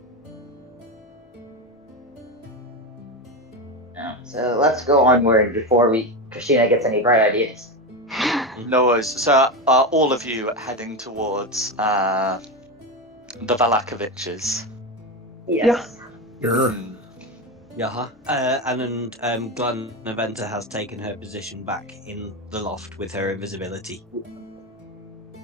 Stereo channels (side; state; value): both; normal; correlation 0.16